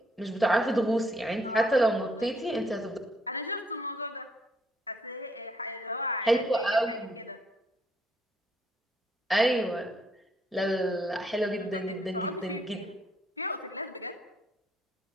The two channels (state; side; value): normal; both; correlation 0.70